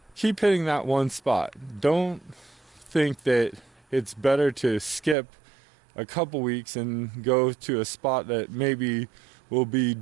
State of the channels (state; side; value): drops out; left; at 5.2 s